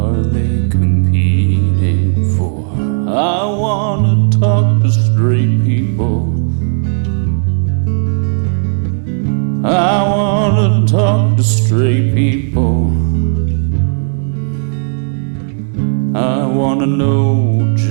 they competing for. I wanna talk to straight people. I wanna talk to straight people. I wanna know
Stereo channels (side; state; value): left; silent; digital silence